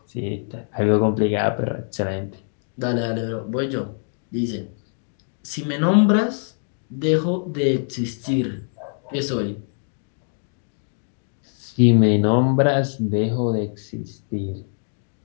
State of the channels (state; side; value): silent; right; digital silence